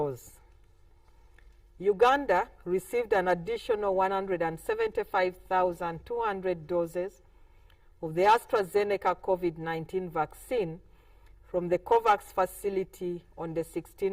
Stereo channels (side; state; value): both; identical; correlation 1.00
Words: Uganda received an additional 175,200 doses of the AstraZeneca COVID-19 vaccine from the COVAX facility on the